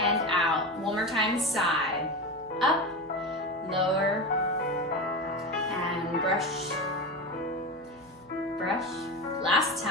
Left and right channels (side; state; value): left; noise; hum, 30 dB below the sound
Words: out. One more time, side, up, lower, and brush, brush. Last